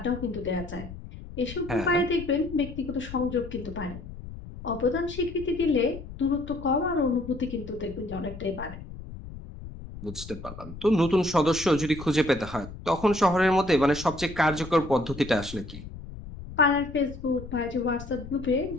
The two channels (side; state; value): left; noise; rumble, 13 dB below the sound